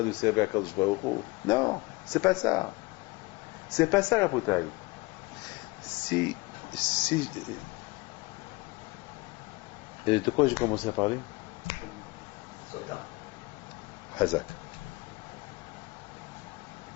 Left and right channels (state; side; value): quieter; right; 23.7 dB